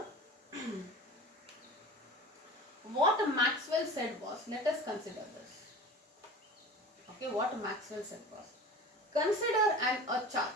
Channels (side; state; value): both; normal; correlation 0.37